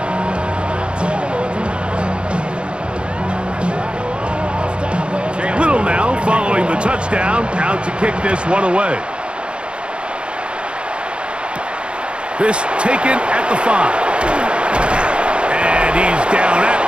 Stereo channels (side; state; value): left; late; 0.056 ms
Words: Little now following the touchdown, out to kick this one away. This taken at the 5. And he's down at